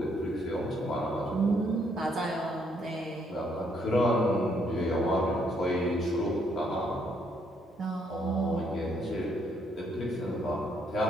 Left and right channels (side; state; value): both; normal; correlation 0.71